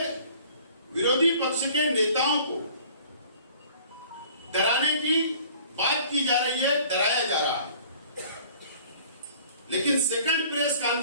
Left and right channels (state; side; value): inverted; both; correlation -0.51